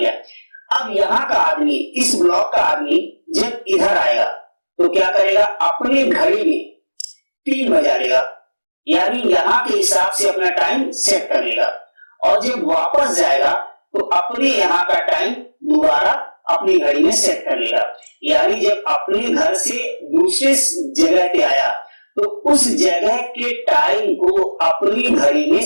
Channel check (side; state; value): both; inverted; correlation -1.00